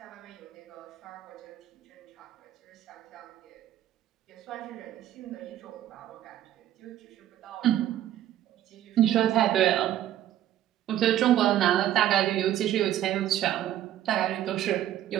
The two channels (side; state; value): left; quieter; 12.2 dB